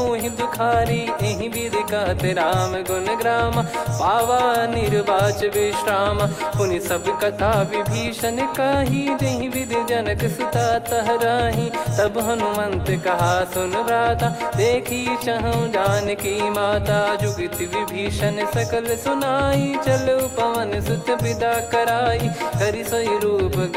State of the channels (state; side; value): identical; both; correlation 1.00